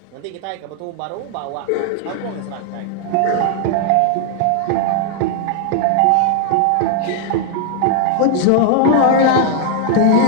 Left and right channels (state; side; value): different; both; correlation 0.00